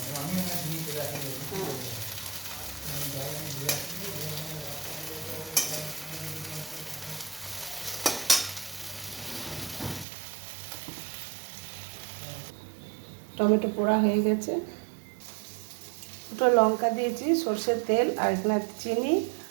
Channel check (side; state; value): left; drops out; at 10.1 s